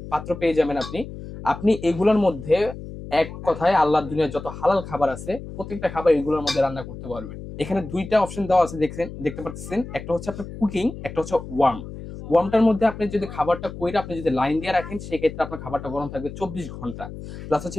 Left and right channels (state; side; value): noise; left; hum, 11 dB below the sound